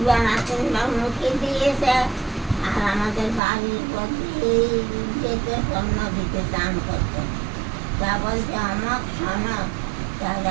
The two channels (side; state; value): left; drops out; at 3.4 s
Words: বেলা 3 বার মুখে দিয়েছে। আর আমাদের বাড়ির প্রতি যেতে পণ্য দিতে চান করতো। তা বলছে আমার শোনো, তা